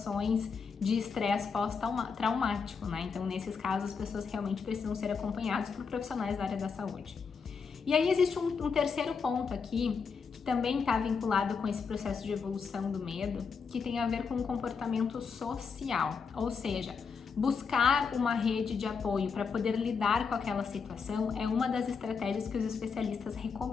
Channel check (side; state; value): right; quieter; 5.6 dB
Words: de estresse pós-traumático, né? Então, nesses casos, as pessoas realmente precisam ser acompanhadas por profissionais da área da saúde. E aí existe um terceiro ponto aqui, que também está vinculado com esse processo de evolução do medo, que tem a ver com o comportamento social, ou seja, buscar uma rede de apoio para poder lidar com aquela situação é uma das estratégias que os especialistas